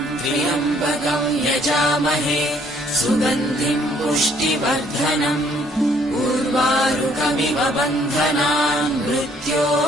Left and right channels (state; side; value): normal; both; correlation 0.63